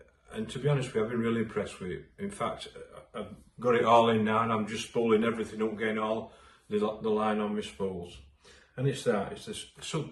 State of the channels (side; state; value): both; identical; correlation 1.00